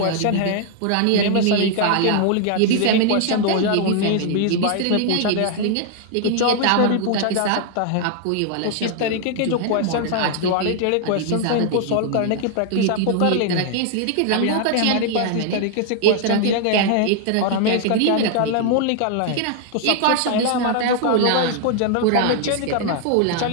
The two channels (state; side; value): different; both; correlation 0.00